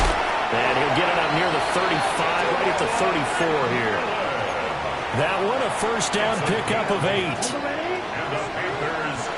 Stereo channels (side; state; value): both; identical; correlation 1.00